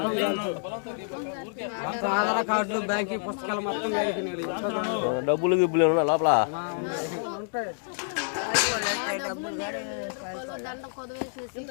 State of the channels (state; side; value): silent; right; digital silence